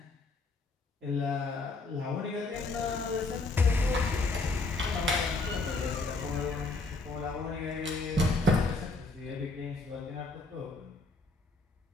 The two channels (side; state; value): right; quieter; 3.4 dB